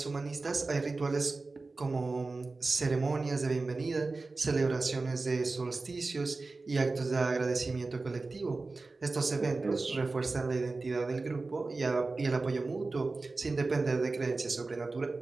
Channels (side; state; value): left; quieter; 3.6 dB